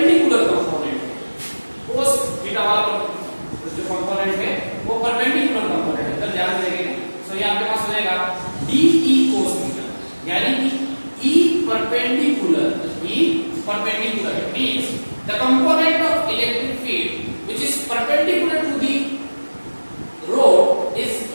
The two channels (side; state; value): both; inverted; correlation -1.00